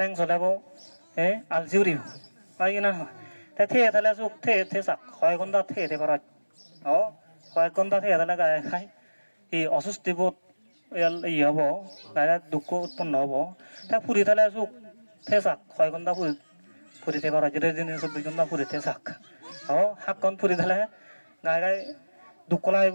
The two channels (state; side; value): inverted; both; correlation -1.00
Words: চলাব আলজি উৰিব হয় কিনা নহয় তাই থিয়ে থালে সুখ থে চাক 6 ঘণ্টা থিয়ে দিবার 6 ঘণ্টা থিয়ে থালে গায়ে খাই এই অসুস্থি বোধ ই হব গায়ে দুঃখ উৎপন্ন হব তাই ফুরি থালে সুখ থে চাক 6 ঘণ্টা ফুরি থাকবার যেটা দিন 24 ঘণ্টা ফুরি থে চাক হাতখন ফুরি থালে গায়ে গায়ে দুঃখ